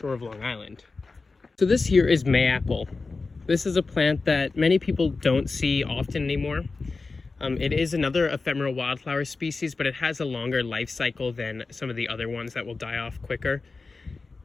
of Long Island. So this here is mayapple. This is a plant that many people don't see often anymore. It is another ephemeral wildflower species, but it has a longer life cycle than some of the other ones that will die off quicker.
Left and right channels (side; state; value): right; quieter; 4.0 dB